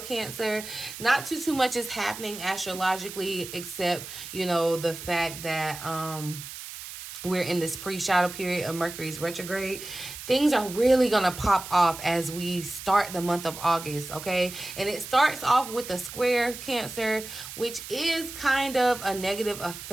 not too much is happening astrologically, except, you know, the fact that we're in this pre-shadow period of Mercury's retrograde. Things are really going to pop off as we start the month of August, okay? And it starts off with a square, Cancer, which is kind of a negative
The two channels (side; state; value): right; noise; hiss, 11 dB below the sound